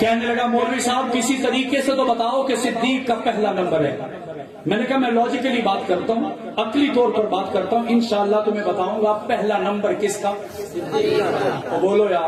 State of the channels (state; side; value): identical; both; correlation 1.00